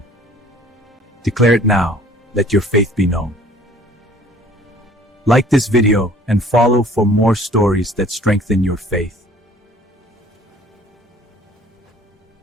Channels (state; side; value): normal; both; correlation 0.53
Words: Declare it now. Let your faith be known. Like this video and follow for more stories that strengthen your faith